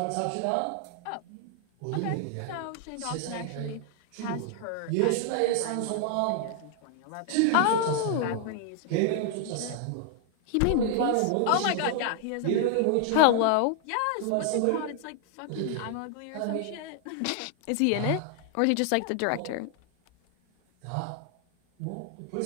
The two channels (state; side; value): different; both; correlation 0.00